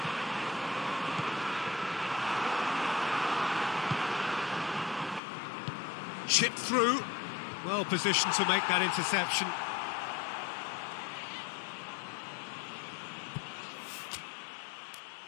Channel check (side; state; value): right; drops out; at 5.2 s